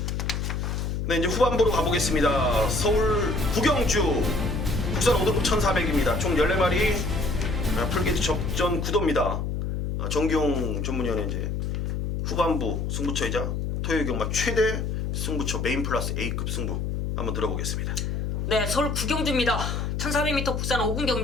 네, 이제 후반부로 가보겠습니다. 서울 구경주 국산 5등급 1400입니다. 총 14마리 풀게이트 접전 구도입니다. 정기용 전문위원회 이제 후반부 승부처이자 토요일 경마 최대 승부처 메인 플러스 A급 승부 한번 들어보겠습니다. 네, 서울 구경주입니다. 1400m 국산 5군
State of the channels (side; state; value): left; noise; hum, 1 dB below the sound